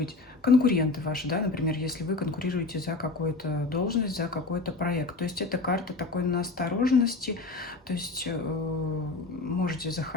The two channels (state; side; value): quieter; right; 3.5 dB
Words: Конкуренты ваши, да, например, если вы конкурируете за какую-то должность, за какой-то проект. То есть это карта такой настороженности, то есть можете